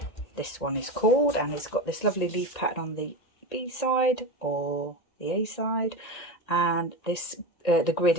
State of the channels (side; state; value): right; late; 1.9 ms